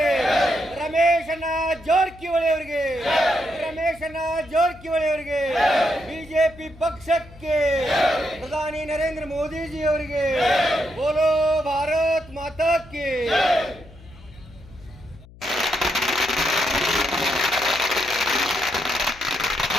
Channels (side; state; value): left; noise; hum, 21 dB below the sound